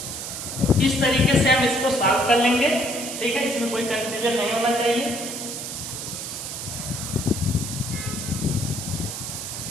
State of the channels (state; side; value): noise; right; hiss, 6 dB below the sound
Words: इस तरीके से हम इसको सॉल्व कर लेंगे। ठीक है, इसमें कोई कंफ्यूजन नहीं होना चाहिए।